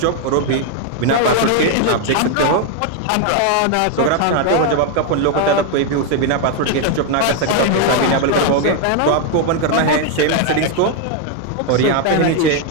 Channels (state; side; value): different; both; correlation 0.01